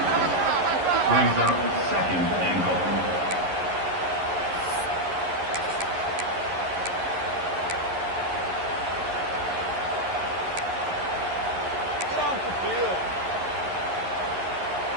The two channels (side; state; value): left; late; 11 ms